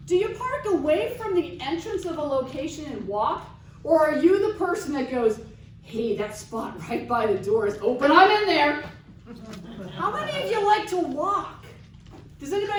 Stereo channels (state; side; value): identical; both; correlation 1.00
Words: Do you park away from the entrance of a location and walk? Or are you the person that goes, hey, that spot right by the door is open, I'm in there? How many of you like to walk? Does